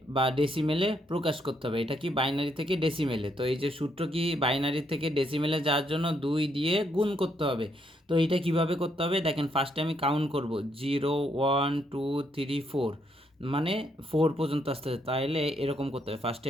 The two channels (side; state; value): both; normal; correlation 0.74